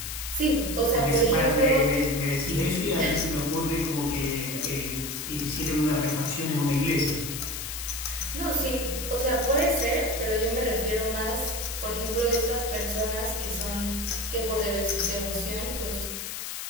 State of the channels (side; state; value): left; noise; hiss, 6 dB below the sound